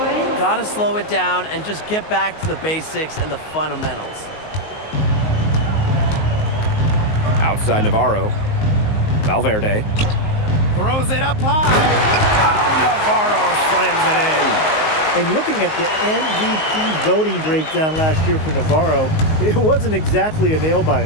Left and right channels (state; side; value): late; right; 19 ms